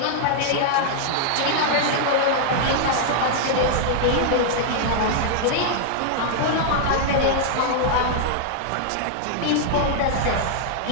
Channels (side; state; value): both; different; correlation -0.01